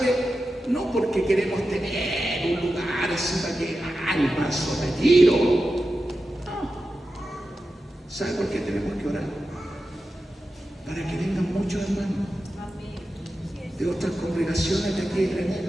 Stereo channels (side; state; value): both; normal; correlation 0.92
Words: No porque queremos tener un lugar así para que el paso retiro. No. ¿Sabe por qué tenemos que orar? Para que vengan muchos hermanos de otras congregaciones de aquí de